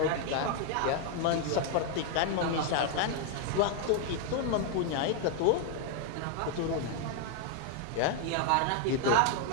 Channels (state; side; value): different; both; correlation 0.00